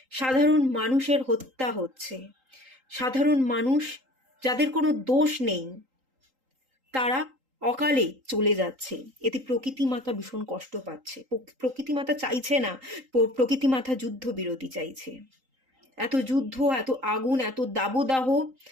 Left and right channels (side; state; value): left; late; 3.8 ms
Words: সাধারণ মানুষের হত্যা হচ্ছে, সাধারণ মানুষ যাদের কোনো দোষ নেই তারা অকালে চলে যাচ্ছে। এতে প্রকৃতি মাতা ভীষণ কষ্ট পাচ্ছে। প্রকৃতি মাতা চাইছে না, প্রকৃতি মাতা যুদ্ধ বিরতি চাইছে। এত যুদ্ধ, এত আগুন, এত দাবদাহ